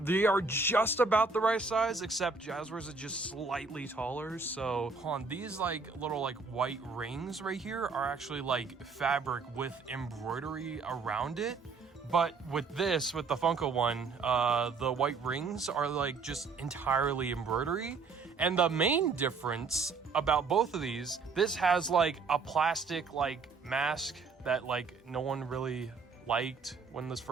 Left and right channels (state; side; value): quieter; left; 4.6 dB